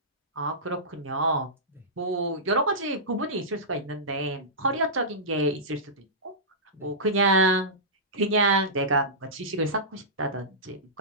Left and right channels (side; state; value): both; normal; correlation -0.17